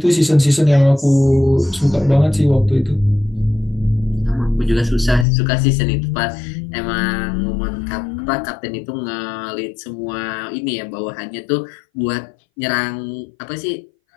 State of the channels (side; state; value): right; drops out; at 5.2 s